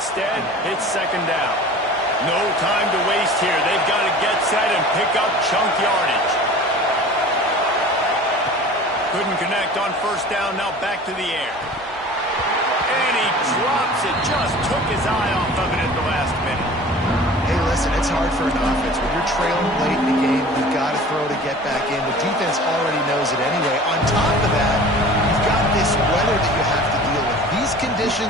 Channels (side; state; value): both; normal; correlation 0.42